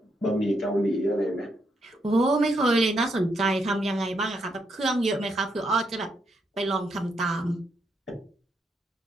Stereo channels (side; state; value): both; normal; correlation 0.78